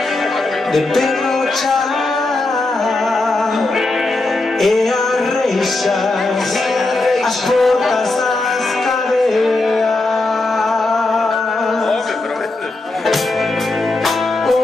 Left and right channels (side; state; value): right; quieter; 3.1 dB